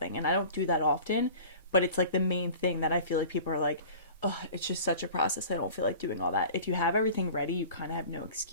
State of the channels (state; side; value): inverted; both; correlation -0.42